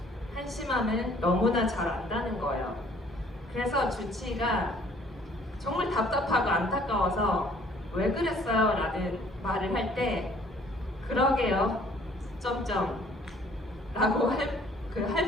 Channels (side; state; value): both; normal; correlation 0.57